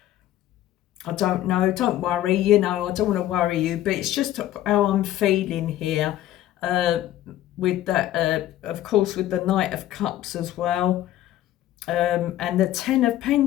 I don't know, don't worry, you know, I don't want to worry you, but it's just how I'm feeling here. With that, of course, with the Knight of Cups as well. And the Ten of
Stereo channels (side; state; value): right; quieter; 13.5 dB